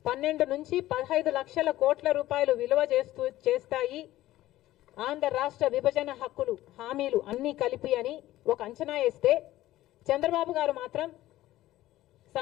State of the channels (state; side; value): quieter; right; 15.4 dB